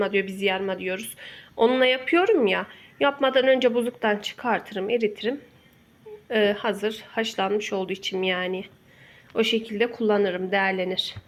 diyor, biz yarma diyoruz. Onunla yapıyorum ya. Yapmadan önce buzluktan çıkartırım, eritirim. Hazır haşlanmış olduğu için yani. O şekilde kullanırım, değerlenir.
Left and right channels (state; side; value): identical; both; correlation 1.00